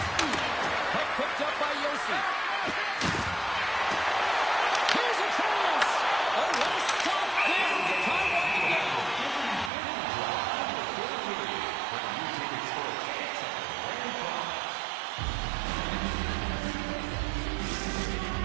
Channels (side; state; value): left; drops out; at 9.7 s